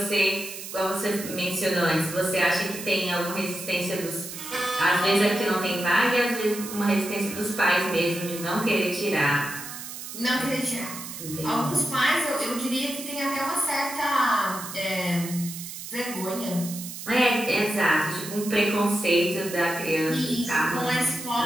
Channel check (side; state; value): right; noise; hiss, 10 dB below the sound